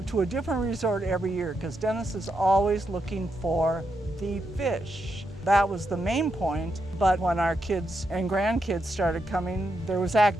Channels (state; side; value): normal; both; correlation 0.82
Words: to a different resort every year because Dennis is always looking for the fish. That was the main point, but when our kids and grandkids started coming, there was